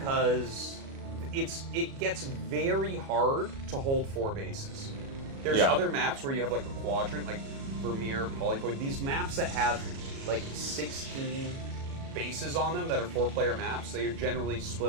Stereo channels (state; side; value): late; left; 37 ms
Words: it gets very hard to hold 4 bases. There's other maps where you have like a quadrant, like Vermeer, Polypoid, these maps that have like 16 bases on them that are 4-player maps. They are generally